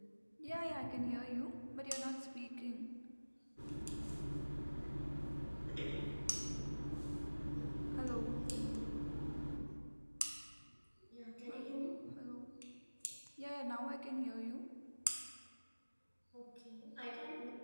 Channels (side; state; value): both; inverted; correlation -1.00